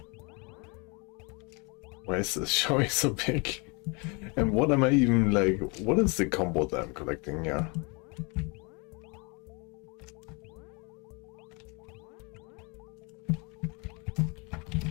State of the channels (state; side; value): quieter; right; 30.9 dB